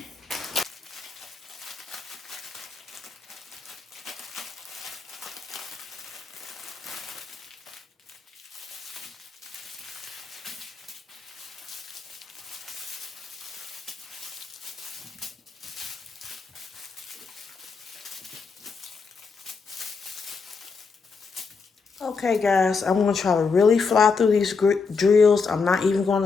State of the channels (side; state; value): right; quieter; 4.9 dB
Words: Okay, guys, I'm going to try to really fly through these drills. I'm not even going